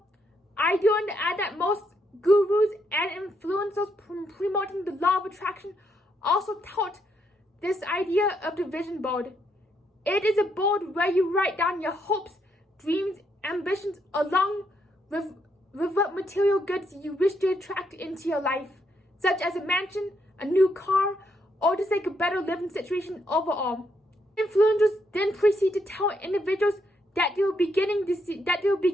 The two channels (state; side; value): normal; both; correlation 0.76